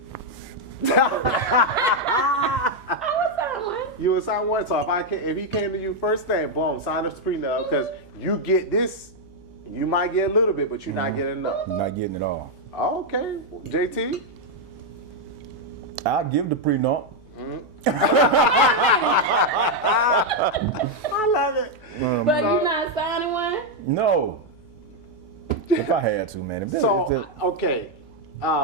I would sign one. You would sign one. So if he came to you first thing, boom, sign the prenup, because you get this. You might get a little bit, but you're not getting enough. You're not getting it all. Okay, JT. I'll give the prenup. I love it. But you not signing one? No. If I had to, man. So okay,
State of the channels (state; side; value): noise; left; hum, 25 dB below the sound